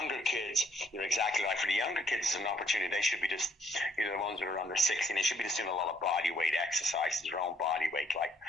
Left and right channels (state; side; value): normal; both; correlation 0.68